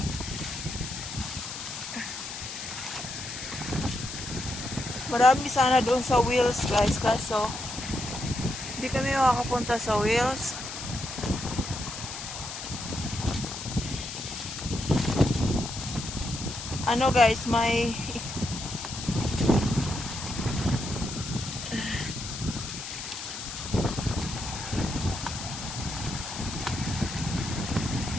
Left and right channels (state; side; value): noise; left; hiss, 8 dB below the sound